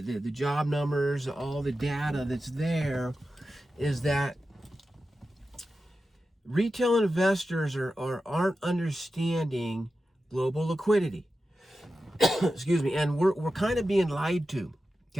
the job numbers, all the data that's there, is that retail investors aren't understanding global liquidity. Excuse me, and we're kind of being lied to,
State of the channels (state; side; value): normal; both; correlation 0.92